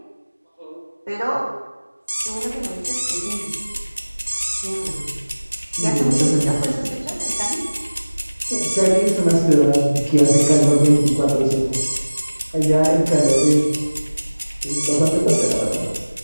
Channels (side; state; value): both; inverted; correlation -1.00